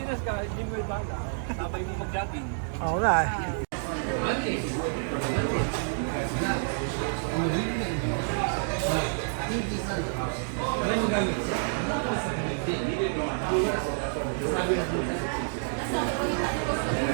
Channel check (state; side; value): silent; left; digital silence